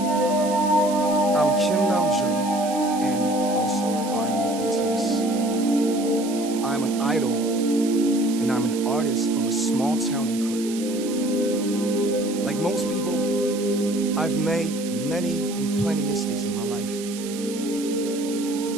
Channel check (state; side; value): noise; right; hiss, 12 dB below the sound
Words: I'm Kim Namjoon and also RM BTS. I'm an idol and I'm an artist from a small town in Korea. Like most people, I've made many and plenty mistakes in my life.